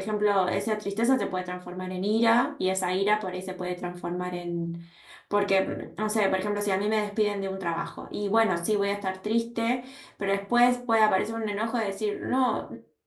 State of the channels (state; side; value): identical; both; correlation 1.00